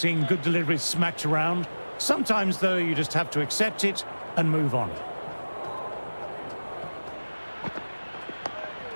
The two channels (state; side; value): inverted; both; correlation -1.00